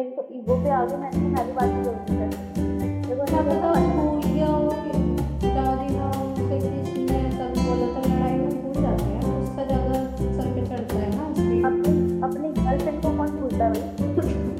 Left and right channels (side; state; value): both; identical; correlation 1.00